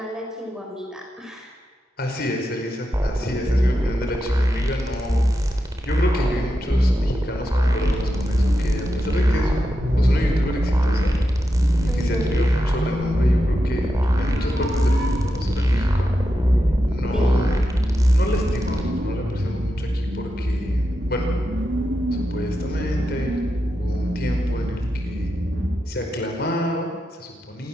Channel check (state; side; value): normal; both; correlation 0.88